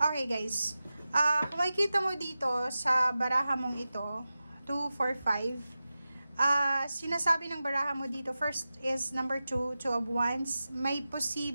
guys. Kung makikita mo dito sa baraha mong ito, 2, 4, 5, sinasabi ng baraha mo dito, first is number 2, Two of Wands, may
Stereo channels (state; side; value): inverted; both; correlation -0.94